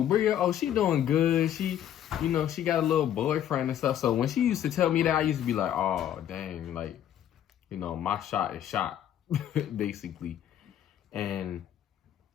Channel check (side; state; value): right; quieter; 10.7 dB